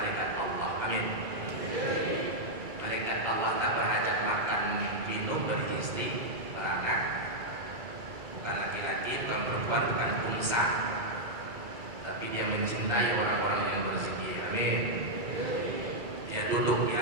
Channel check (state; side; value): late; left; 2.3 ms